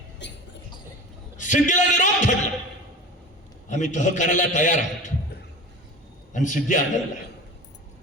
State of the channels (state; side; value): normal; both; correlation 0.34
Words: सिद्धीला निरोप ठरला, आम्ही तह करायला तयार आहोत. आणि सिद्धी आनंदला.